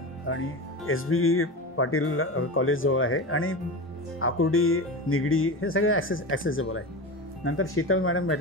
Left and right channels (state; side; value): normal; both; correlation 0.24